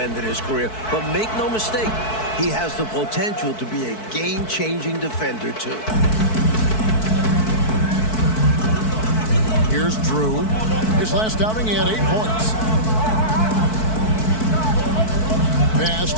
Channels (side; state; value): right; late; 4.6 ms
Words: of his career, but make no mistake, he has the potential to be a game-changing defender, too. Here's Drew. His last outing, he had 8 points. Pass